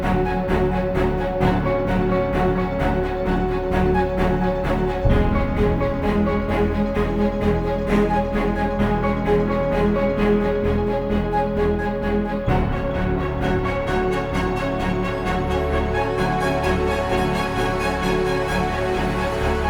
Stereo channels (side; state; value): both; identical; correlation 1.00